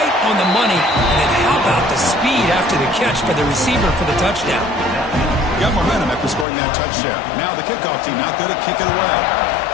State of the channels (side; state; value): right; drops out; at 6.5 s